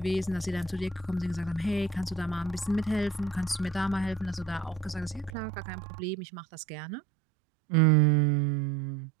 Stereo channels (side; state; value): left; drops out; at 5.3 s